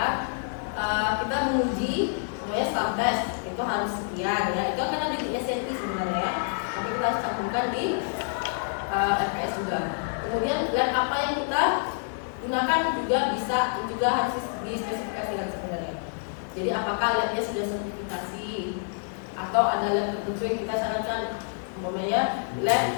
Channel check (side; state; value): right; silent; 56 dB below the other